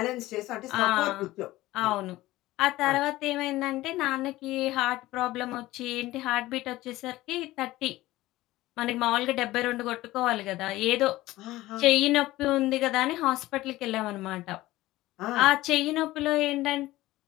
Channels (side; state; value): right; quieter; 17.4 dB